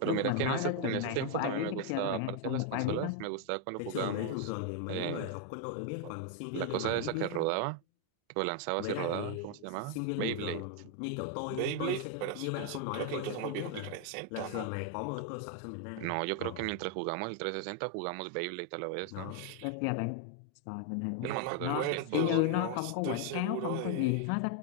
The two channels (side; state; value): both; different; correlation 0.01